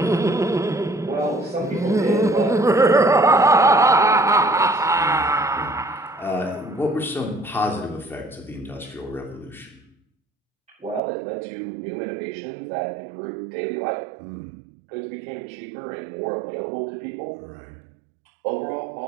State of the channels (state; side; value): drops out; left; at 11.0 s